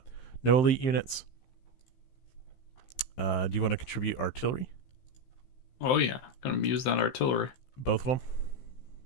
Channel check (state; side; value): late; right; 15 ms